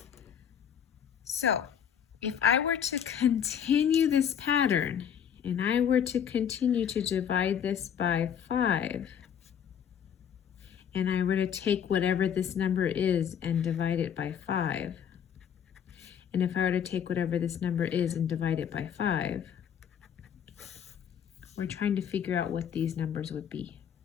so if I were to continue this pattern and I were to continue to divide this by 5, and I were to take whatever this number is and divide it by 5, and if I were to take whatever this number is and divide it by 5, we're trying to figure out what these numbers would be.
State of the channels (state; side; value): quieter; right; 8.5 dB